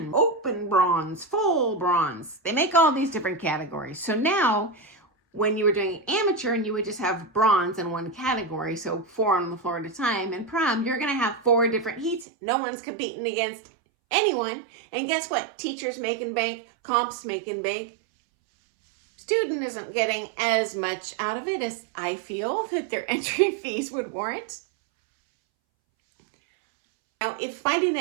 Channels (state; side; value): drops out; left; at 12.2 s